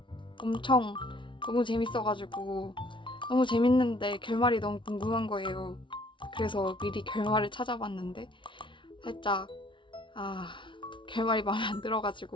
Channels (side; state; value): right; late; 0.24 ms